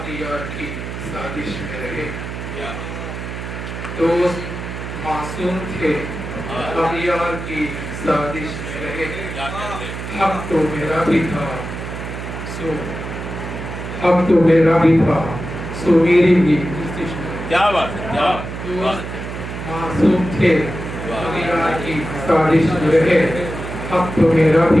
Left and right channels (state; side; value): noise; right; hum, 8 dB below the sound